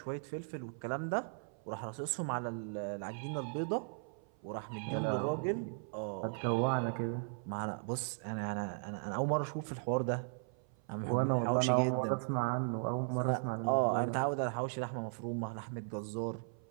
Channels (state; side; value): silent; left; 53 dB below the other